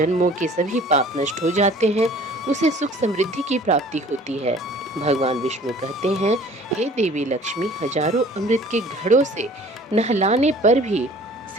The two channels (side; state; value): both; normal; correlation 0.50